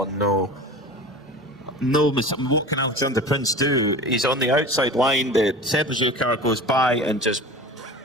no. No, what can Alexander Prince do? He's on the outside line. The Sablejou car goes by and just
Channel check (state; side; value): normal; both; correlation 0.36